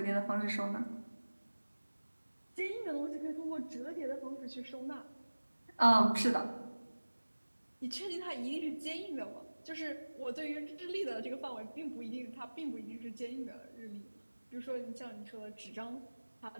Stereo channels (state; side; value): inverted; both; correlation -1.00